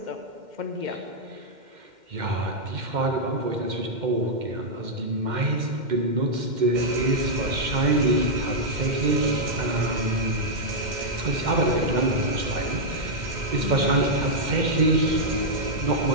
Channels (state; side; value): late; left; 2.1 ms